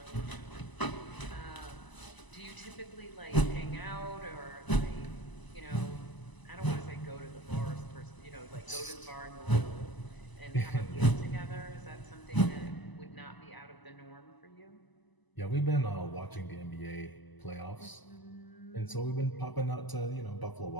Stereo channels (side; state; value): right; late; 1.0 ms